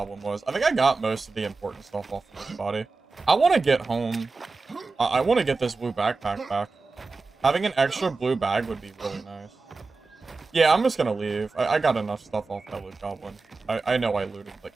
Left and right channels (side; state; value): left; quieter; 4.0 dB